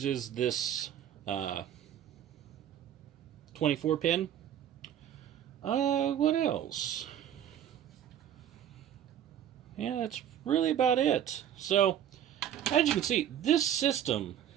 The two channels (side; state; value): left; quieter; 10.2 dB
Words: this 24 pin. What else? Yeah, that's really about it. So, as you can see, this system